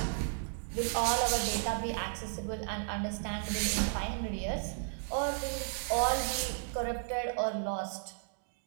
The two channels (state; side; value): silent; left; digital silence